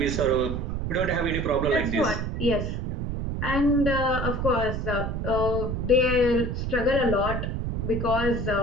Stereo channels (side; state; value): right; noise; rumble, 2 dB below the sound